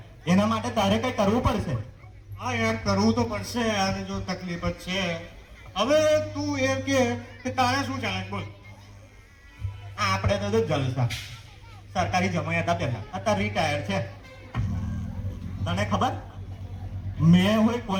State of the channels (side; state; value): both; identical; correlation 1.00